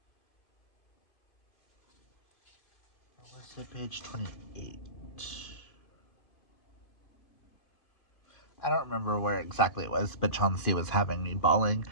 What was it, page 28? I don't remember where exactly it was, but Chauncey was having me bawling.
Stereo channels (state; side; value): late; right; 2.5 ms